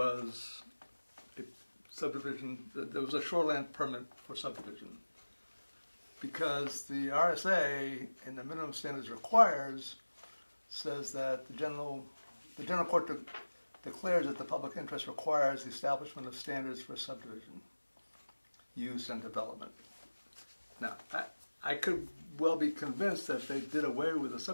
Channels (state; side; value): inverted; both; correlation -1.00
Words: a subdivision, there was a shoreland permit for subdivision. Because the RSA in the minimum standards requires, says that the general court declares that the public interest requires the establishment of standards for subdivision, use, and development. Now, I could well be convinced that they did away with the